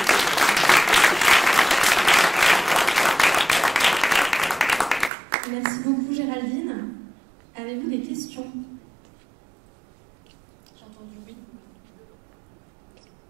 Merci beaucoup Géraldine. Avez-vous des questions? J'ai entendu oui.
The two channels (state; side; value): drops out; left; at 5.1 s